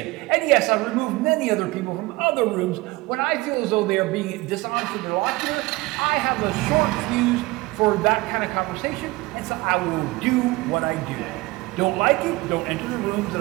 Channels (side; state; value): left; quieter; 21.2 dB